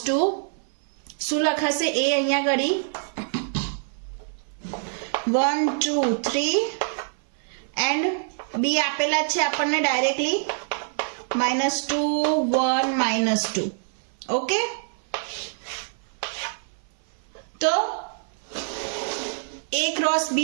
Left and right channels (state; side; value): silent; left; 56 dB below the other